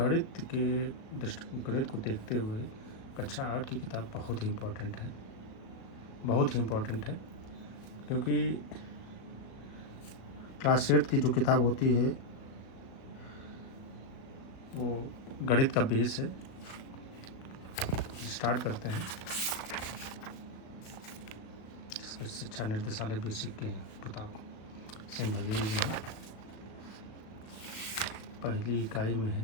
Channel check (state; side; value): late; right; 36 ms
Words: को देखते हुए कक्षा 8 की किताब बहुत ही इम्पोर्टेंट है, क्योंकि क्लास 8 की जो किताब होती है वो गणित का बेस है। स्टार्ट करते हैं। जिसमें शिक्षा निर्देशालय बेसिक के प्रताप सिंह बघेल जी हैं। पहली इकाई में